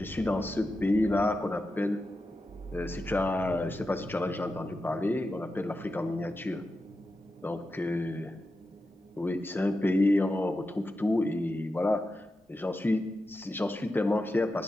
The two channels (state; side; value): normal; both; correlation 0.90